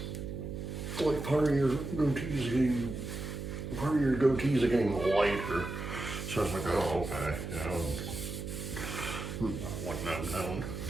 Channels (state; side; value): noise; right; hum, 6 dB below the sound